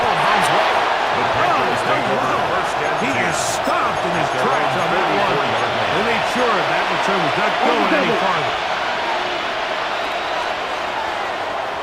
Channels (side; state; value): both; identical; correlation 1.00